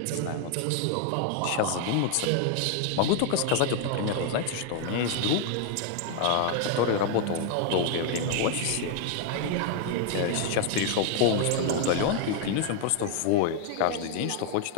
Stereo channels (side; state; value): both; different; correlation 0.00